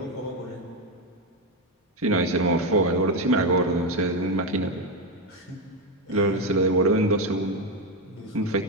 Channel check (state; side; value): normal; both; correlation 0.09